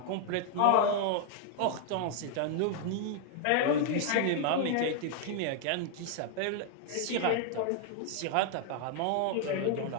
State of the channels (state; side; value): different; both; correlation 0.00